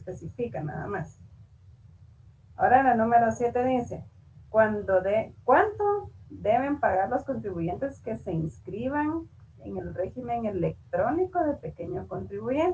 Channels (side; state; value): both; identical; correlation 1.00